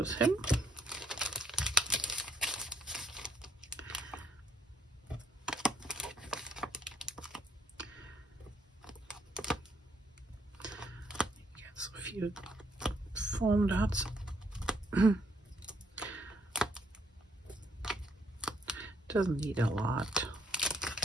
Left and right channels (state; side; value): normal; both; correlation 0.70